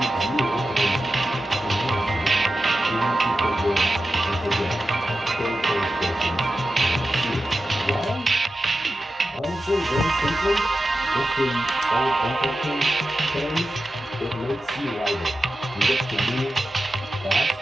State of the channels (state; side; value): normal; both; correlation 0.92